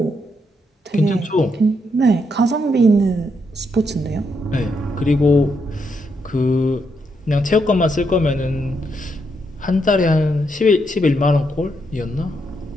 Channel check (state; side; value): normal; both; correlation 0.79